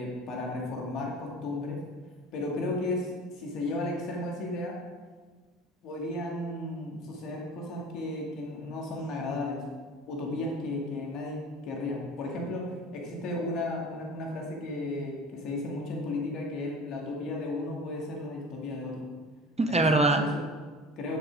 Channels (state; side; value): normal; both; correlation 0.39